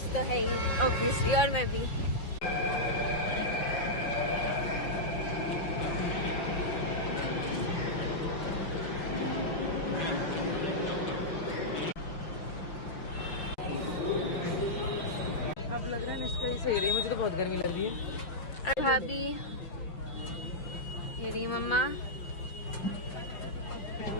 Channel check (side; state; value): right; late; 5.7 ms